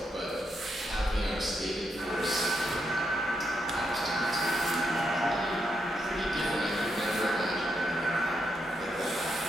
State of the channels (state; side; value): normal; both; correlation 0.81